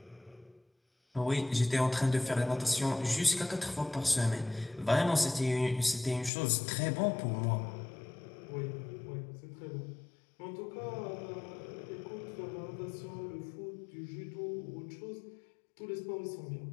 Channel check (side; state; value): right; drops out; at 6.3 s